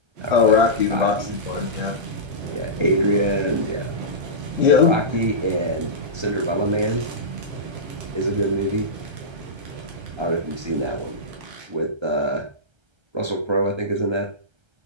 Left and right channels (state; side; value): late; left; 1.3 ms